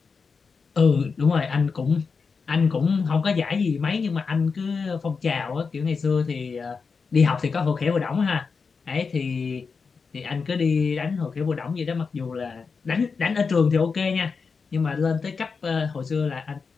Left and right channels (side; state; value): right; quieter; 5.1 dB